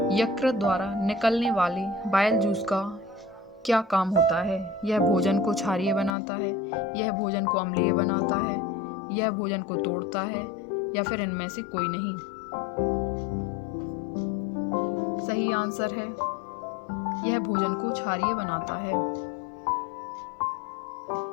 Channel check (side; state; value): right; drops out; at 6.2 s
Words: यकृत द्वारा निकलने वाले बाइल जूस का क्या काम होता है? यह भोजन को क्षारीय बनाता है, यह भोजन को अम्लीय बनाता है, यह भोजन को तोड़ता है या फिर इनमें से कोई नहीं? सही आंसर है यह भोजन को क्षारीय बनाता है।